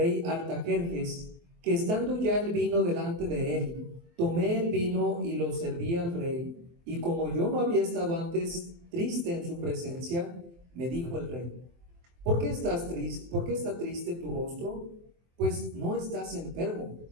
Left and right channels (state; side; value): late; left; 23 ms